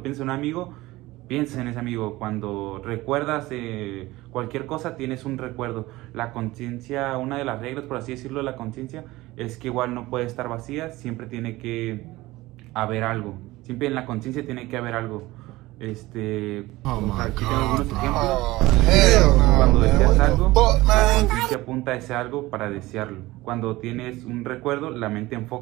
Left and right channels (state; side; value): quieter; left; 18.9 dB